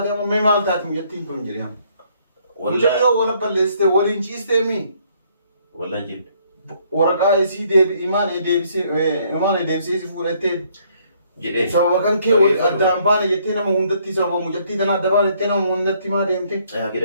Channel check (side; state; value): both; inverted; correlation -0.66